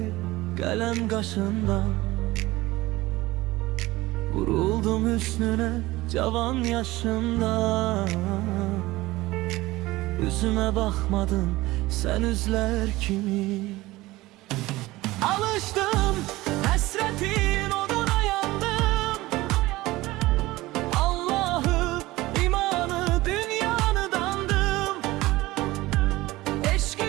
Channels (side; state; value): left; quieter; 19.0 dB